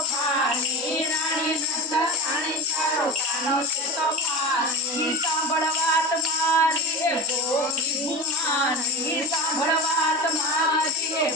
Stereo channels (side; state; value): both; normal; correlation 0.25